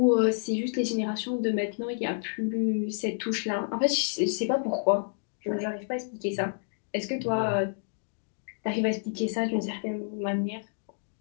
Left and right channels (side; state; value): right; silent; digital silence